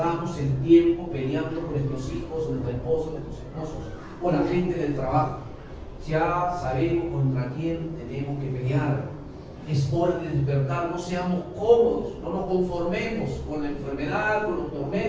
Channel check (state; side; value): identical; both; correlation 1.00